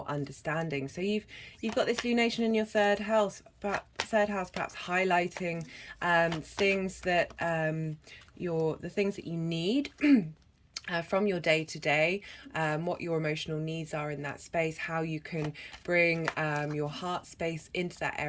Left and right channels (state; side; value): identical; both; correlation 1.00